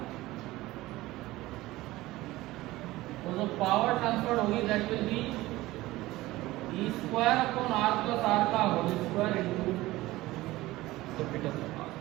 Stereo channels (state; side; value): quieter; left; 18.1 dB